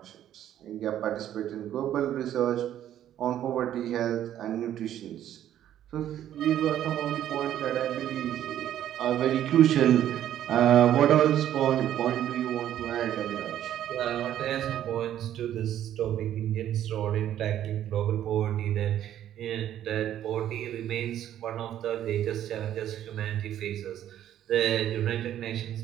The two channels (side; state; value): left; quieter; 11.4 dB